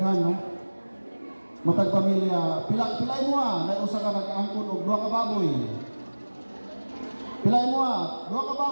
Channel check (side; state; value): both; inverted; correlation -1.00